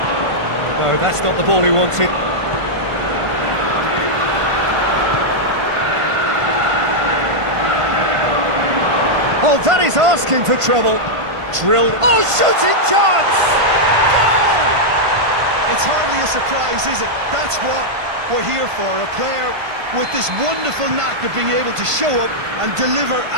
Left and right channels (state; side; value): late; left; 1.5 ms